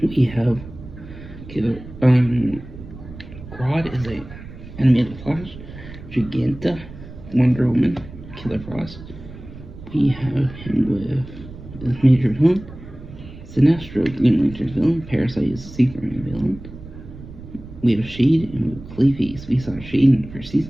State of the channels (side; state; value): right; noise; rumble, 15 dB below the sound